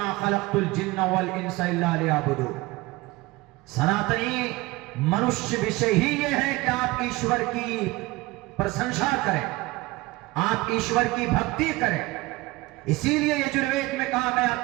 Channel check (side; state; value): left; quieter; 21.0 dB